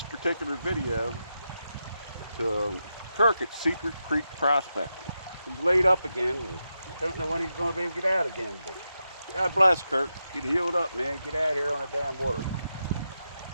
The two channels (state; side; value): inverted; both; correlation -0.88